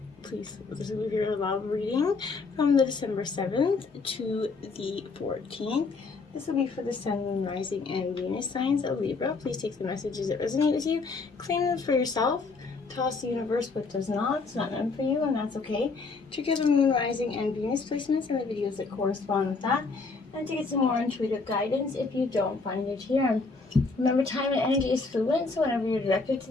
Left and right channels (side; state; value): right; quieter; 4.2 dB